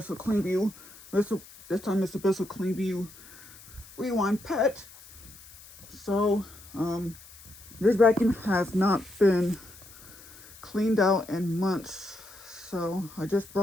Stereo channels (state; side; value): noise; left; hiss, 20 dB below the sound